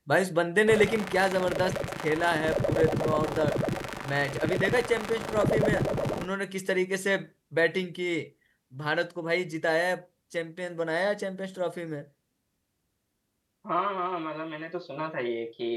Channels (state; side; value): identical; both; correlation 1.00